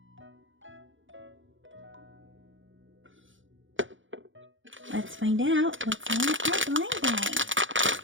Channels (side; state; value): left; late; 0.56 ms